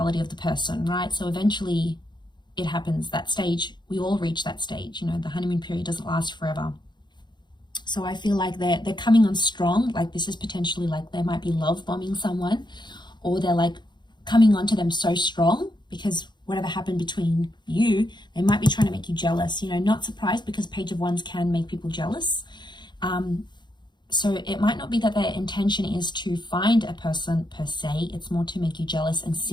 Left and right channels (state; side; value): late; right; 0.21 ms